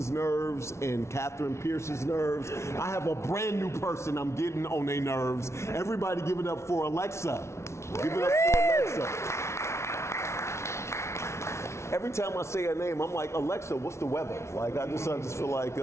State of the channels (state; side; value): late; right; 0.13 ms